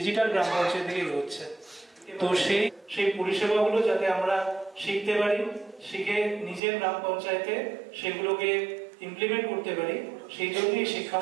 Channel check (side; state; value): left; drops out; at 6.6 s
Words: গ্রাম পঞ্চায়েতের দিকে এগোচ্ছে। তো সেই পরিষেবাগুলো যাতে আমরা শিখতে পারি, শিখে নিজের গ্রাম পঞ্চায়েতে সেগুলোকে ইমপ্লিমেন্ট করতে পারি, সেই জন্যই